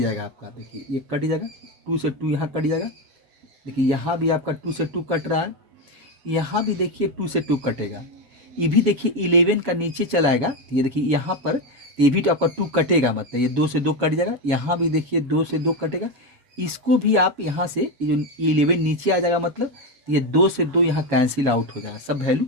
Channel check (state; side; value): late; left; 7.2 ms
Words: आपका, देखिए ये कट जाएगा, 2 से 2 यहाँ कट जाएगा, देखिए यहाँ भी आपका 2 से 2 कट रहा है, यहाँ भी देखिए 2 से 2 कटेगा, ये भी देखिए 11 का नीचे चलाएगा, तो ये देखिए यहाँ पर ये भी तो आपका 2 कटेगा, मतलब ये 2 से 2 कट जाएगा, यहाँ भी देखिए 2 से 2 कटेगा, इसको भी आप यहाँ से ये जो 11 नीचे आ जाएगा, मतलब ये 2 से 2 यहाँ कैंसिल आउट हो जाएगा, सब वैल्यू